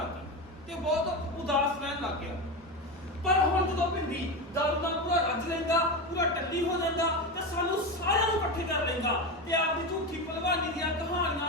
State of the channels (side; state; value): both; normal; correlation 0.19